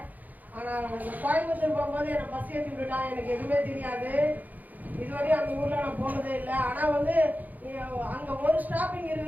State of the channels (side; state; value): left; late; 0.082 ms